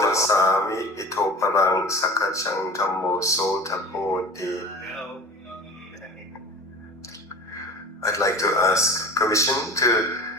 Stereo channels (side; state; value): both; normal; correlation 0.38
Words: Sami ito parang sakachang dhammo so tapoti. I'd like to ask permission to